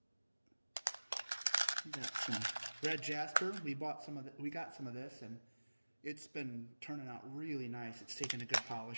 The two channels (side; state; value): both; inverted; correlation -1.00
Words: we got some red jasper. We got some of this, and it's been turning out really nice. It's taken a good